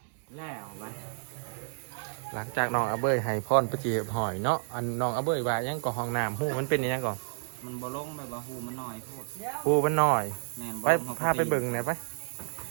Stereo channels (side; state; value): left; silent; digital silence